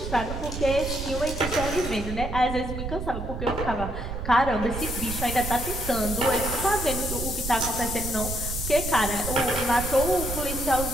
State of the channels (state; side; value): noise; right; rumble, 5 dB below the sound